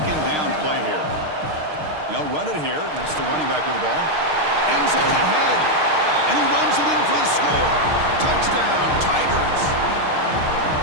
down play here. They'll run it here. That's the running back with the ball. End zone ahead, and he runs it in for the score. Touchdown, Tigers.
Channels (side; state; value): left; late; 6.5 ms